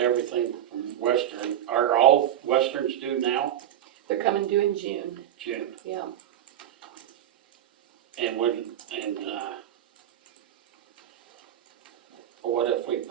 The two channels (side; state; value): left; quieter; 11.2 dB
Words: everything from Western, are all Westerns due now? they're coming due in June, June. yeah. And what if we